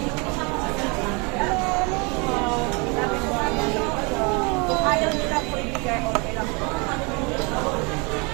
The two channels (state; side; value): quieter; left; 30.4 dB